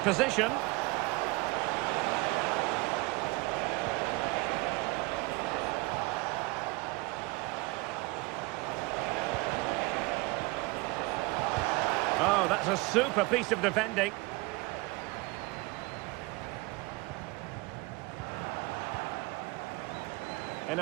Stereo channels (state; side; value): quieter; left; 23.9 dB